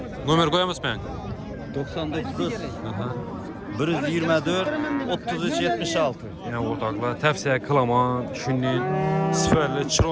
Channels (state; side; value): identical; both; correlation 1.00